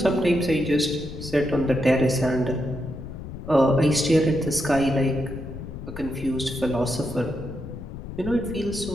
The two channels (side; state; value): left; noise; rumble, 10 dB below the sound